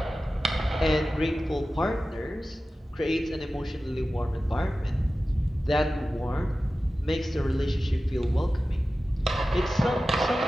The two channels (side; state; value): both; normal; correlation 0.95